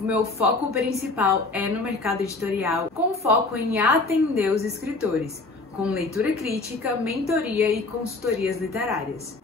foco principal é no mercado editorial, com foco em atender os escritores, com leitura crítica, mentoria e consultorias literárias.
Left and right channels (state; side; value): quieter; right; 3.5 dB